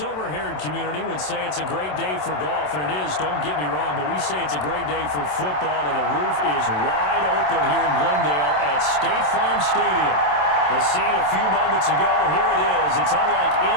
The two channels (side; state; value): right; late; 27 ms